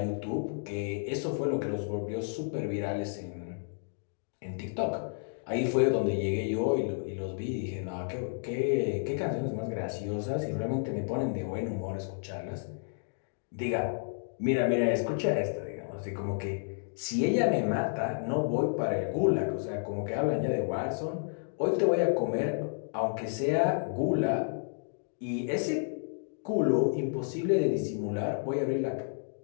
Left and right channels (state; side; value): silent; right; digital silence